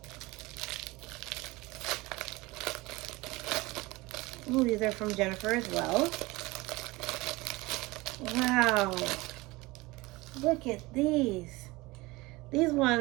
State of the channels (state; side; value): quieter; left; 22.0 dB